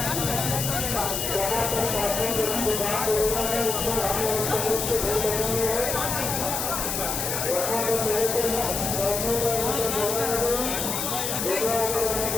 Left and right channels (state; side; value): noise; left; hiss, 2 dB below the sound